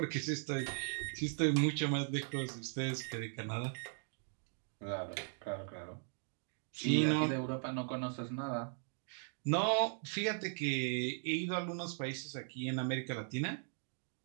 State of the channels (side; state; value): left; silent; 52 dB below the other